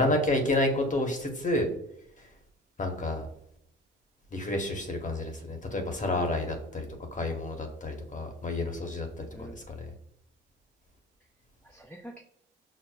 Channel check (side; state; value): both; normal; correlation 0.37